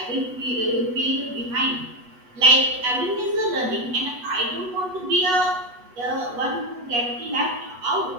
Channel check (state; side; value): late; left; 8.1 ms